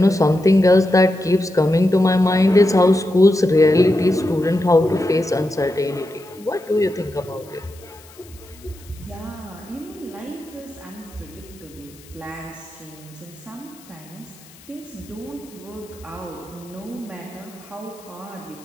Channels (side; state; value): left; noise; hiss, 24 dB below the sound